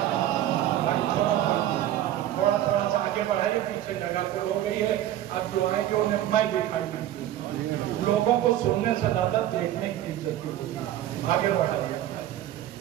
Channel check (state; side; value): quieter; left; 12.7 dB